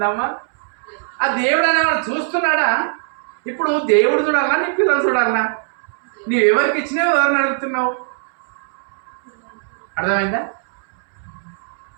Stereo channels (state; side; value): silent; left; 65 dB below the other